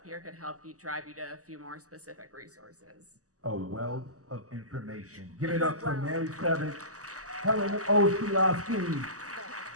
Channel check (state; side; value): late; left; 0.66 ms